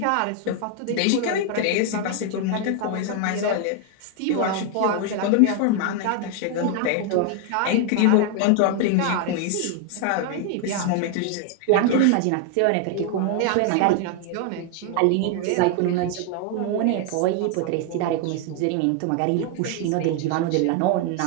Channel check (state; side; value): different; both; correlation 0.01